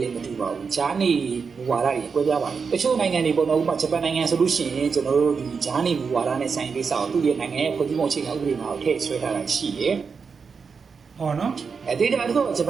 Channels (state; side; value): quieter; left; 5.5 dB